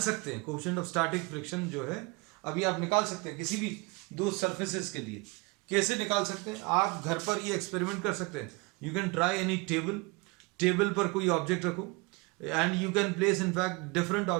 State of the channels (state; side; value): quieter; left; 26.6 dB